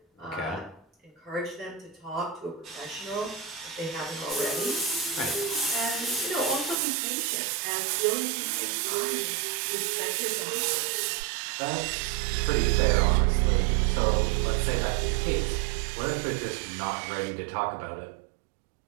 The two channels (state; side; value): drops out; left; at 6.8 s